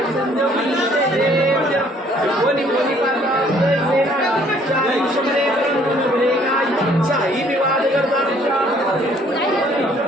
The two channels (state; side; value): normal; both; correlation 0.60